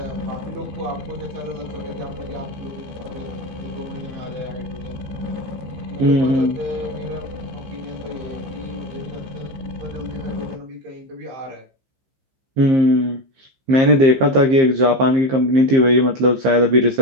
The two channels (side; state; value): left; late; 15 ms